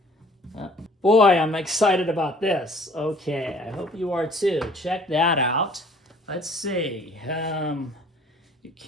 Boy, I'm excited about this. Okay, I hope you are too. Check that out. Let's see. You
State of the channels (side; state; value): both; normal; correlation 0.53